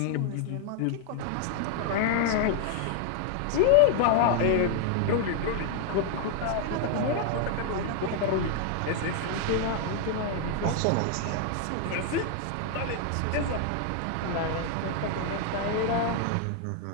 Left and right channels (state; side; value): different; both; correlation 0.00